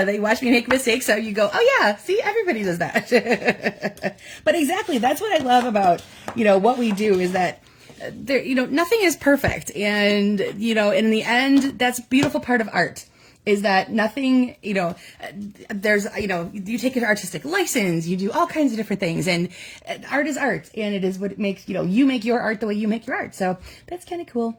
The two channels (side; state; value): both; identical; correlation 1.00